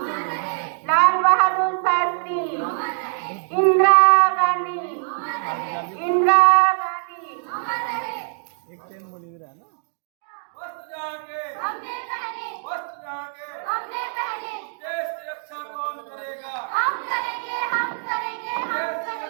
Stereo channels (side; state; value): left; silent; digital silence